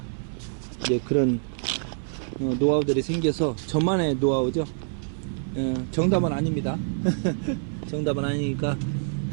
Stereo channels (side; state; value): left; silent; 61 dB below the other